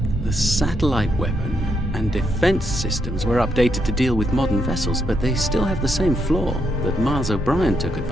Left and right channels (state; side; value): normal; both; correlation 0.78